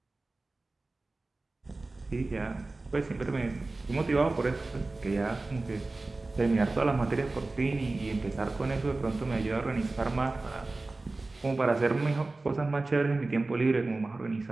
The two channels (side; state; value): left; quieter; 3.2 dB